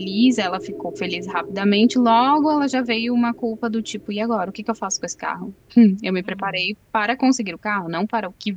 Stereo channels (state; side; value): identical; both; correlation 1.00